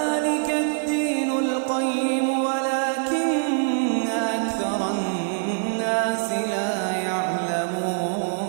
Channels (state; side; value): silent; left; 58 dB below the other